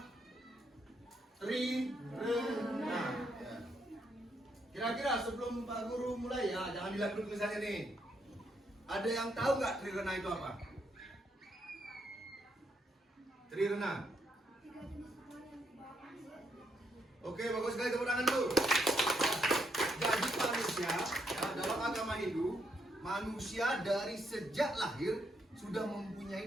Trirena. Ya. Kira-kira sebelum Pak Guru mulai ya, jangan dilihat dulu tulisannya nih. Ada yang tahu nggak Trirena itu apa? Trirena. Oke, bagus sekali, tepuk tangan dulu. Jadi manusia ya, dalam agama Hindu, manusia dari sejak lahir sudah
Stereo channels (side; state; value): both; normal; correlation 0.76